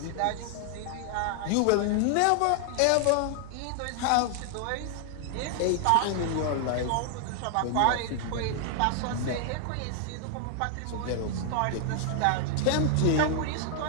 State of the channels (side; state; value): both; different; correlation 0.00